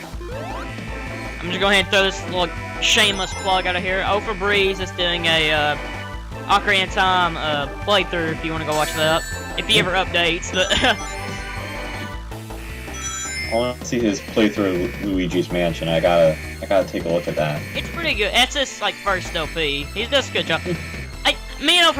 I'm just going ahead and throw this little shameless plug out of here. Oh for Breeze is doing a Ocarina of Time playthrough if you want to go watch that. If he ever updates, but I want to see his playthrough of Luigi's Mansion. I gotta take a look at that. it's pretty good. That's his like first LP. He does a good job. Me and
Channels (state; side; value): identical; both; correlation 1.00